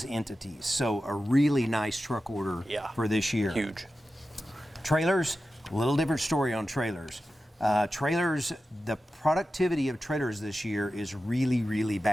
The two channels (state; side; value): normal; both; correlation 0.93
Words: entities. So a really nice truck order for this year. Huge. Trailers, a little different story on trailers. Trailers, the productivity of trailers this year is really, really